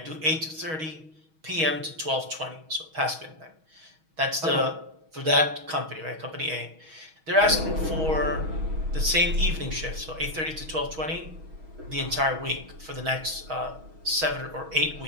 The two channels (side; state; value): left; late; 6.3 ms